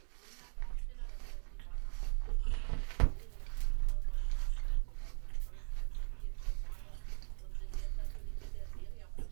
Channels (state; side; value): silent; left; 52 dB below the other